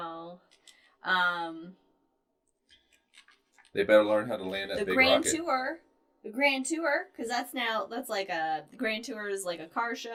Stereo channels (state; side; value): identical; both; correlation 1.00